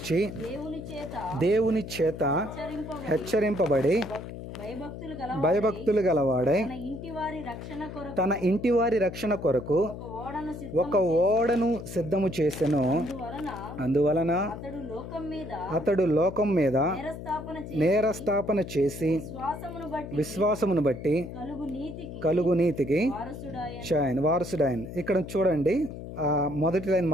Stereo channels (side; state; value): left; noise; hum, 10 dB below the sound